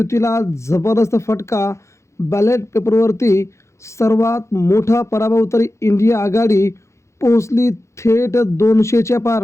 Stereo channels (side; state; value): right; late; 0.14 ms